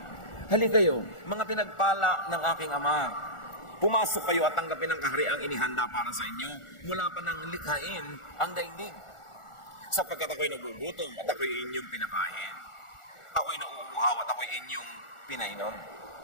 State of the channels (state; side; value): late; right; 1.4 ms